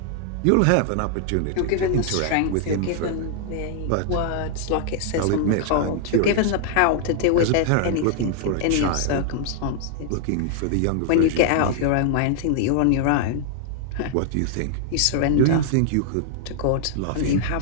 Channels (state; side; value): different; both; correlation 0.00